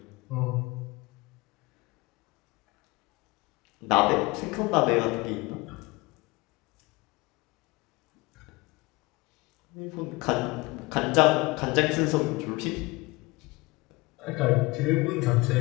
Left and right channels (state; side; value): quieter; right; 23.7 dB